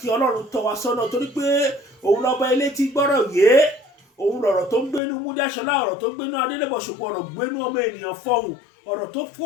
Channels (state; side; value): drops out; right; at 5.0 s